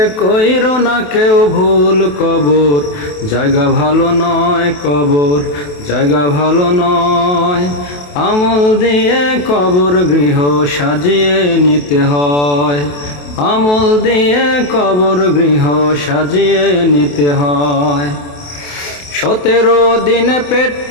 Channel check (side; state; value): right; late; 28 ms